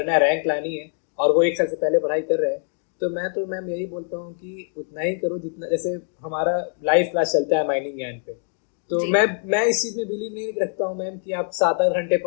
है, रैंक लानी है, और वो 1 साल से पहले पढ़ाई कर रहे हैं, तो मैं तो मैम यही बोलता हूँ कि उतना ही करो जितना, जैसे हमारा लाइव क्लास चलता है माइनिंग ज्ञान पे, तो जी मैं इस चीज़ में बिलीव नहीं रखता हूँ मैम कि आप 7-8 घंटे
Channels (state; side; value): silent; right; 58 dB below the other